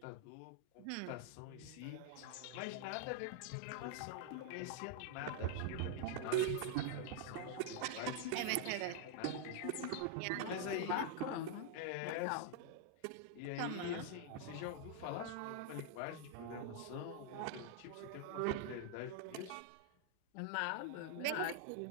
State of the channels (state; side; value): different; both; correlation 0.00